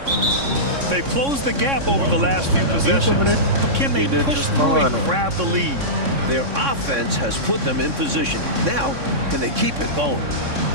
They've closed the gap over the last few possessions, but can they push through and grab the lead? Their offense has put them in position. Now, can they keep it going?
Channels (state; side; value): late; left; 3.6 ms